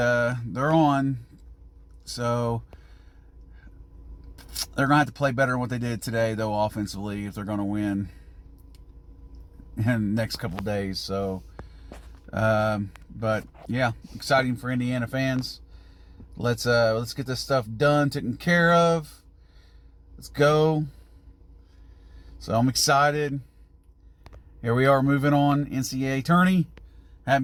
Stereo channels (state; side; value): identical; both; correlation 1.00